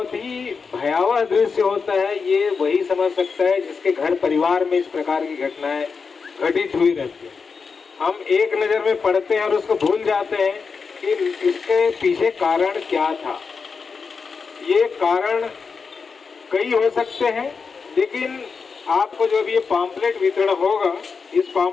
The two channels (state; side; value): quieter; right; 5.2 dB